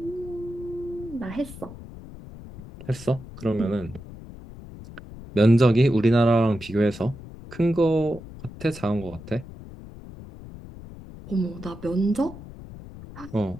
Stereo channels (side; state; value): left; noise; rumble, 15 dB below the sound